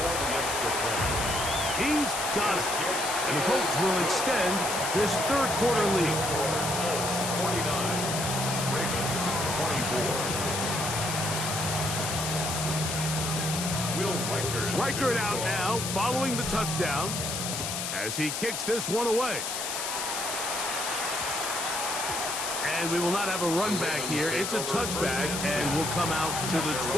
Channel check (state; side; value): noise; left; hiss, 3 dB below the sound